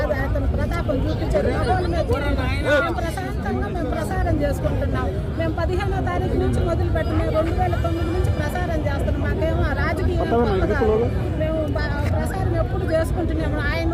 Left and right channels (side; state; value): both; identical; correlation 1.00